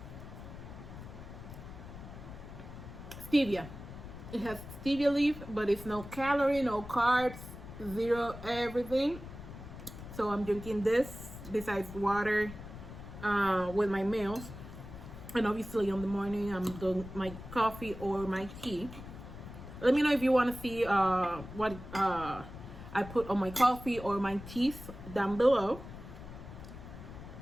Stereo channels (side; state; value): left; noise; rumble, 13 dB below the sound